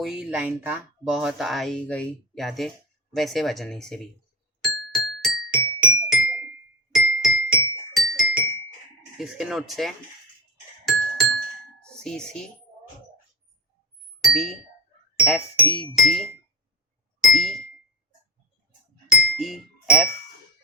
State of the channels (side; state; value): both; normal; correlation 0.26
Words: लाइन था, बहुत आई गई यादें, वैसे बजाने से भी। इसके नोट्स है C C, B, F E G, E, E F,